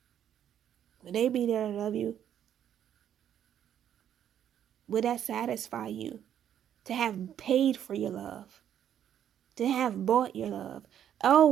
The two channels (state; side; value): quieter; left; 9.9 dB